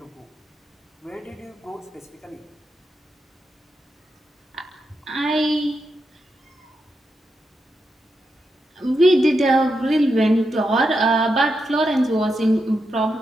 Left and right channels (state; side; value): normal; both; correlation 0.85